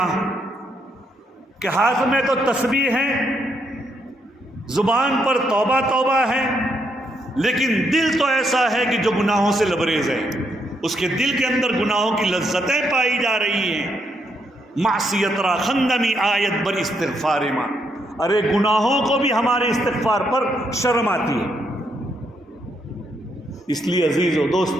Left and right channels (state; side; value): normal; both; correlation 0.76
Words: کہ ہاتھ میں تو تسبیح ہے، زبان پر توبہ توبہ ہے، لیکن دل تو ایسا ہے کہ جو گناہوں سے لبریز ہے، اس کے دل کے اندر گناہوں کی لذتیں پائی جا رہی ہیں۔ معصیت را خندمی آیت بر استغفار ماں، ارے گناہوں کو بھی ہمارے استغفار پر شرم آتی ہے۔ اس لیے عزیز و